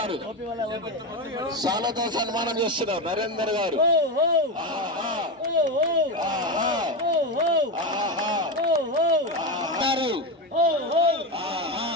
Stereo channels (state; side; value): normal; both; correlation 0.15